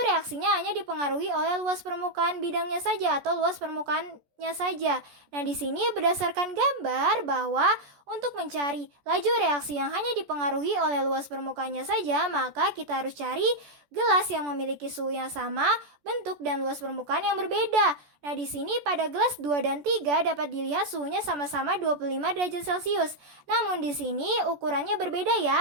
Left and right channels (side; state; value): left; late; 14 ms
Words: reaksinya hanya dipengaruhi oleh luas permukaan bidangnya saja atau luas permukaannya saja. Nah, di sini berdasarkan gambar bahwa untuk mencari laju reaksi yang hanya dipengaruhi oleh luas permukaannya saja, maka kita harus cari gelas yang memiliki suhu yang sama, bentuk dan luas permukaan yang berbeda. Nah, di sini pada gelas 2 dan 3 dapat dilihat suhunya sama-sama 25 derajat Celcius. Namun di sini ukurannya berbeda